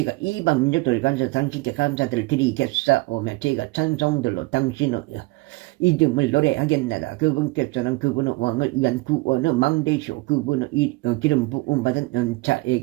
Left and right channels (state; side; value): quieter; left; 22.8 dB